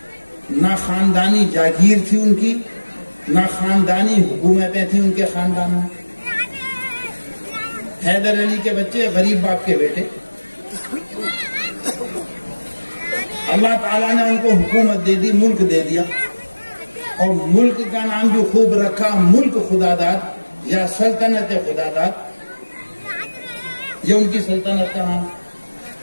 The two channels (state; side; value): inverted; both; correlation -1.00